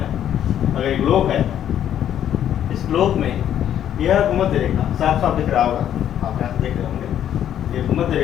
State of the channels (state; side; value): quieter; right; 10.4 dB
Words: अगर एक ग्लोब है, इस ग्लोब में यह भूमध्य रेखा साफ साफ दिख रहा होगा, आप यहाँ से देख रहे होंगे। ये भूमध्य